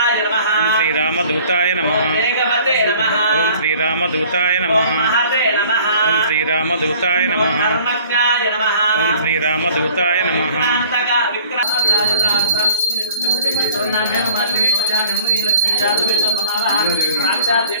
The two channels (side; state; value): both; inverted; correlation -0.51